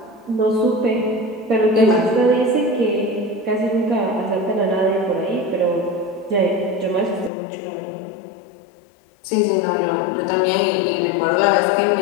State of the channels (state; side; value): drops out; right; at 7.3 s